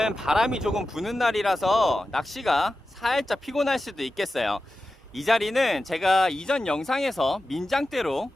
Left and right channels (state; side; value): normal; both; correlation 0.93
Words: 바람이 조금 부는 날이라서 낚시가 살짝 피곤할 수도 있겠어요. 이 자리는 제가 이전 영상에서 민장대로